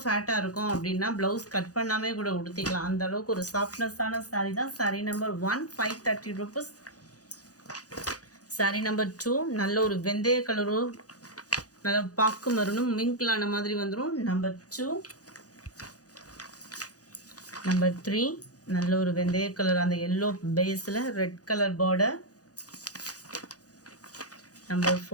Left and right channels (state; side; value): late; right; 0.67 ms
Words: ஃபேட்டாக இருக்கும் அப்படின்னா ப்ளவுஸ் கட் பண்ணாமே கூட உடுத்திக்கலாம். அந்த அளவுக்கு ஒரு சாஃப்ட்னஸான சாரீ தான். Sari number 1 530 rupees. Sari number 2 நல்ல ஒரு வெந்தய கலரும் நல்ல பாக்கு மருணும் மிங்கிளான மாதிரி வந்துடும். நம்பர் 2. நம்பர் 3 நல்ல ஒரு வெந்தய கலர், அந்த எல்லோ பேஸில் red colour border. Number